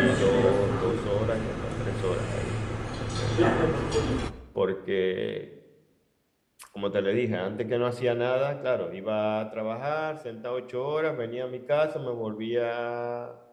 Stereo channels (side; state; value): both; identical; correlation 1.00